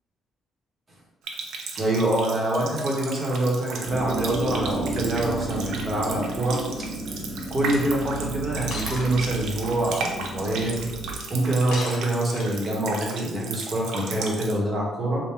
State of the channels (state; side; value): normal; both; correlation 0.70